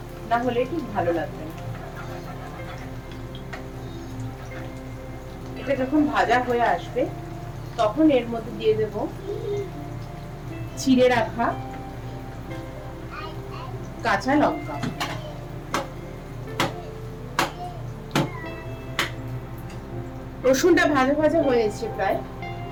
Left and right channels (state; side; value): identical; both; correlation 1.00